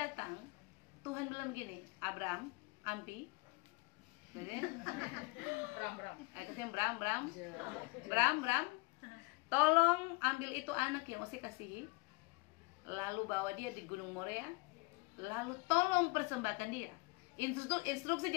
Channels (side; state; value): right; quieter; 26.2 dB